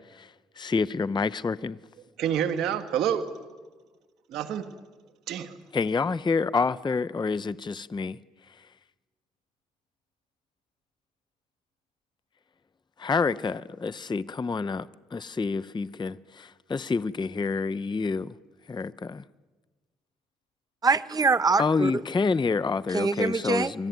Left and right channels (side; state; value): both; normal; correlation 0.65